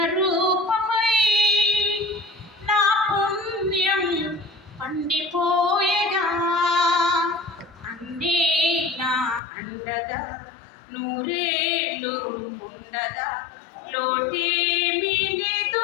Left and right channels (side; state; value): right; drops out; at 9.4 s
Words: రూపమై నా పుణ్యం పండిపోయగా అన్నీ నా అండగా నూరేళ్ళు ఉండగా లోటేమీ